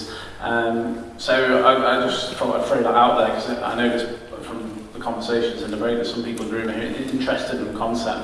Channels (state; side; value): identical; both; correlation 1.00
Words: So I just thought I'd throw that out there because I know there's, from the conversations in the break, there's some people in the room who are interested in the